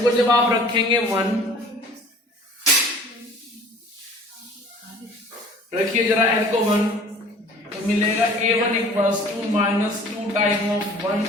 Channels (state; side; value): normal; both; correlation 0.49